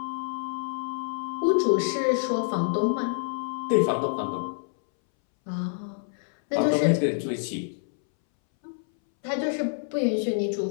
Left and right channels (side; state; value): right; silent; 60 dB below the other